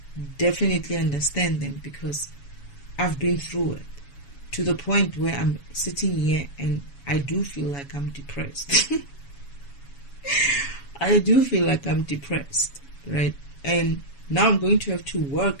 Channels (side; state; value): right; late; 7.1 ms